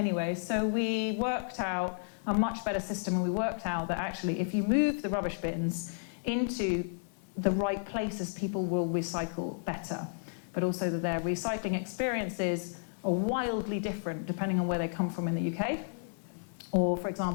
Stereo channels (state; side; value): silent; right; digital silence